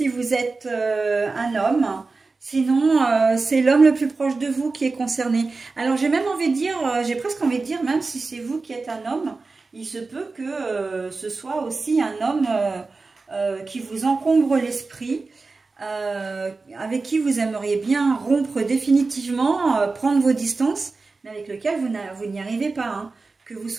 vous êtes un homme. Sinon, c'est l'homme le plus proche de vous qui est concerné. Alors, j'ai même envie de dire, j'ai presque envie de dire, même si c'est vous qui êtes un homme, il se peut que ce soit aussi un homme qui vous encombre l'esprit, avec qui vous aimeriez bien rompre définitivement, prendre vos distances, mais avec lequel vous n'y arrivez pas, hein. Que vous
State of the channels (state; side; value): quieter; left; 3.9 dB